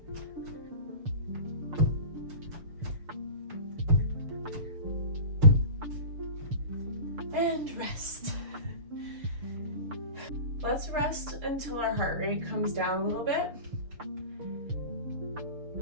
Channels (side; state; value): left; late; 6.9 ms